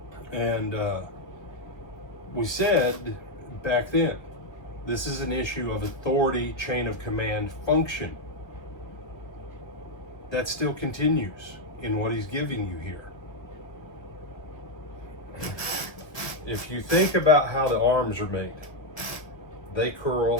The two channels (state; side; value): late; right; 1.3 ms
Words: We said back then, this is an issue of authority, chain of command, function. That still continues in what he's giving you here. If you think about how the arms are made, they